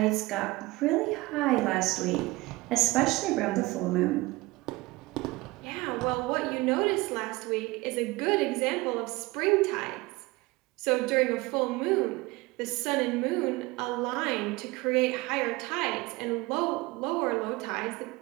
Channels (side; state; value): left; quieter; 21.5 dB